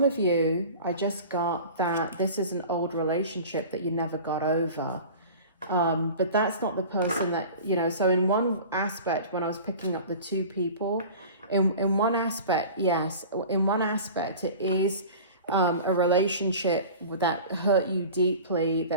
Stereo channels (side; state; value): both; inverted; correlation -0.39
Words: of you, I just got that this is an old relationship that you never got over. But that's not the person that, so in one aspect, when I was picking up the two people, in one aspect, yes, in one aspect, it is a relationship that hurt you deeply,